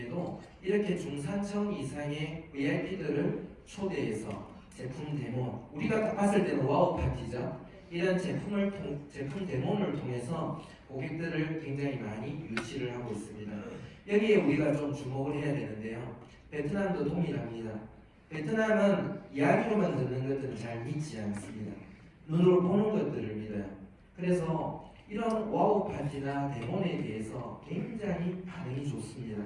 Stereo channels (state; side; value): identical; both; correlation 1.00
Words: 이렇게 중산층 이상의 VIP들을 초대해서 제품 데모, 우리가 딱 봤을 때는 와우 파티죠. 이런 제품 데모를 통해서 고객들을 굉장히 많이 유치를 하고 있습니다. 여기에 우리가 좀 주목을 해야 되는데요. 베트남도 동일합니다. 베트남은 이야기로만 듣는 것들은 잘 믿지 않습니다. 눈으로 보는 것들을 믿어요. 그래서 이런 와우 파티나 데모에 대해서 굉장히 반응이 좋습니다.